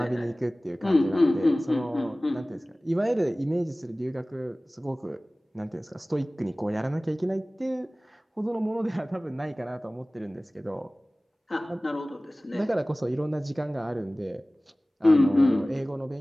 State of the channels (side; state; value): both; normal; correlation 0.98